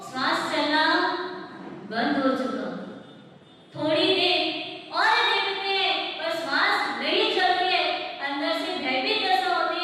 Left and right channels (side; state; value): both; identical; correlation 1.00